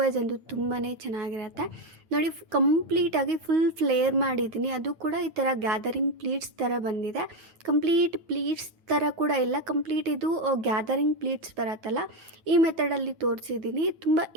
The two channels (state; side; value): late; left; 9.4 ms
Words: ವೈಸ್ ಅಂತೂ ತುಂಬಾ ಚೆನ್ನಾಗಿರುತ್ತೆ. ನೋಡಿ, ಕಂಪ್ಲೀಟಾಗಿ ಫುಲ್ ಫ್ಲೇರ್ ಮಾಡಿದ್ದೀನಿ. ಅದು ಕೂಡ ಈ ಥರ ಗ್ಯಾದರಿಂಗ್ ಪ್ಲೀಟ್ಸ್ ಥರ ಬಂದಿದೆ. ಕಂಪ್ಲೀಟ್ ಪ್ಲೀಟ್ಸ್ ಥರ ಕೂಡ ಇಲ್ಲ, ಕಂಪ್ಲೀಟ್ ಇದು ಗ್ಯಾದರಿಂಗ್ ಪ್ಲೀಟ್ಸ್ ಬರುತ್ತಲ್ಲ, ಈ ಮೆಥಡಲ್ಲಿ ತೋರಿಸಿದ್ದೀನಿ. ತುಂಬ